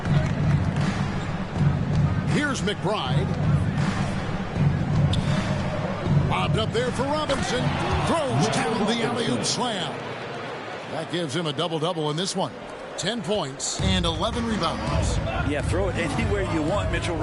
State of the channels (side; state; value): both; identical; correlation 1.00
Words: Here's McBride. Bobbed up there for Robinson. Throws down the alley-oop slam. That gives him a double-double in this one. 10 points and 11 rebounds. Yeah, throw it anywhere you want. Mitchell